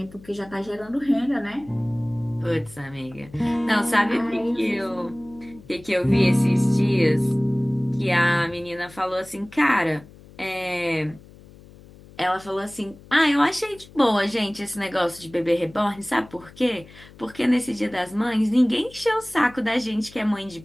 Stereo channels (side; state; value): left; noise; hum, 22 dB below the sound